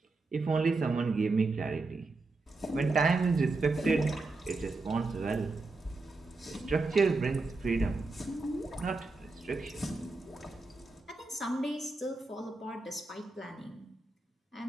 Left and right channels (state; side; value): quieter; left; 3.4 dB